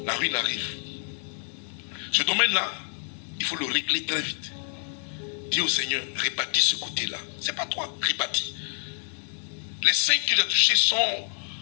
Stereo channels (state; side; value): silent; right; digital silence